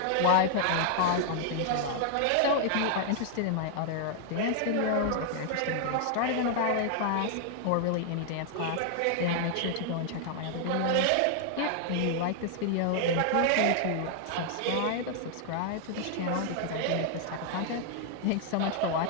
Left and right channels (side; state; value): both; different; correlation 0.00